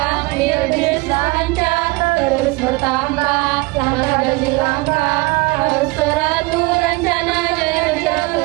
biar bisa lancar terus bertambah. Langkah demi langkah harus teratur, rencana jadi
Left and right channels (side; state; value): left; quieter; 23.9 dB